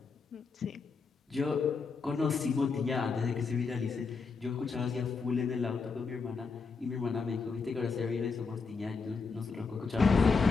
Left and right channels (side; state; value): right; quieter; 4.8 dB